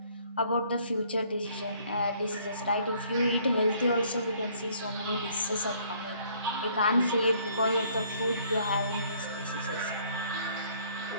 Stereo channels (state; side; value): inverted; both; correlation -0.62